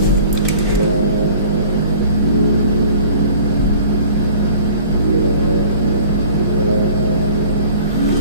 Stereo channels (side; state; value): both; inverted; correlation -0.47